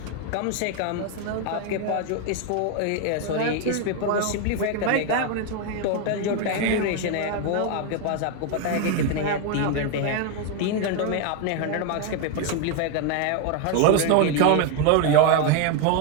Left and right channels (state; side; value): different; both; correlation 0.01